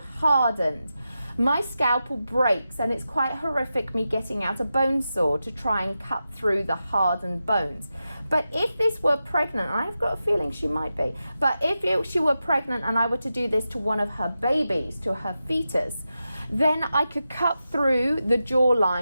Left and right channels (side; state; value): both; inverted; correlation -0.91